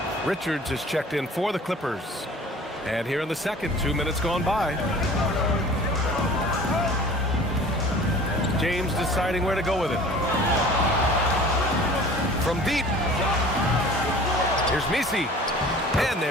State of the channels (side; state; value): both; normal; correlation 0.45